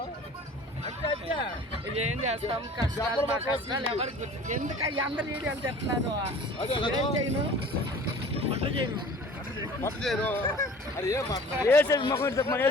ఏం చేస్తాం. కష్టాలు మా కష్టాలు ఎవరికి ఎందుకు అందరు వీడియోలు చెప్తున్నాను. ఏం చేయను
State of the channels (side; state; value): both; normal; correlation 0.45